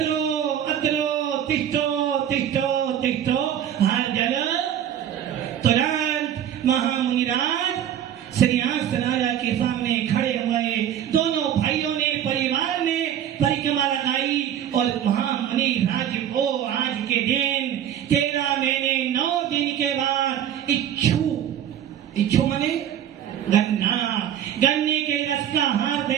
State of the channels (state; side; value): quieter; left; 10.1 dB